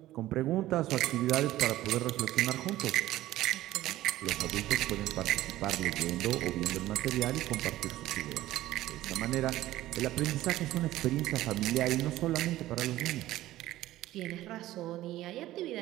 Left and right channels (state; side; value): quieter; left; 15.4 dB